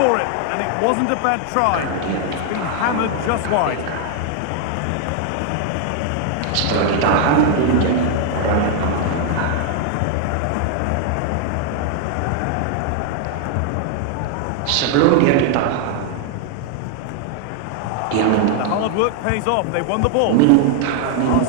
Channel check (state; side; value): different; both; correlation 0.00